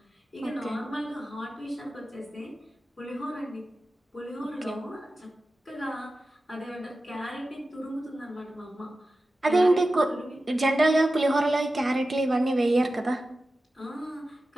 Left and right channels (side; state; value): both; normal; correlation 0.94